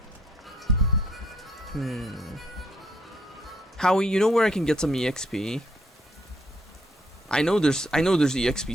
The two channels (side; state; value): both; normal; correlation 0.69